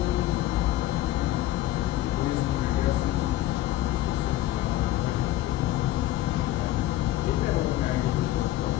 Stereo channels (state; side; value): quieter; right; 14.8 dB